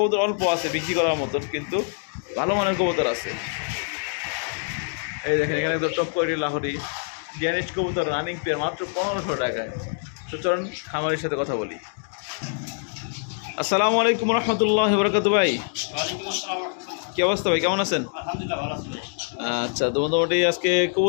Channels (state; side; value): silent; right; 59 dB below the other